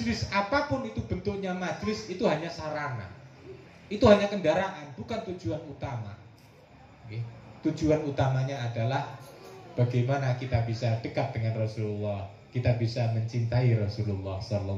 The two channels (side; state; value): both; identical; correlation 1.00